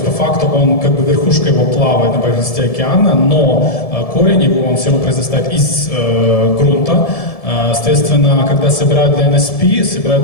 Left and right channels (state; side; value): late; right; 1.7 ms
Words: по факту он, как бы верхушка его плавает на поверхности океана, но корень его, он все равно произрастает из грунта. Соответственно, когда собирают для NSP,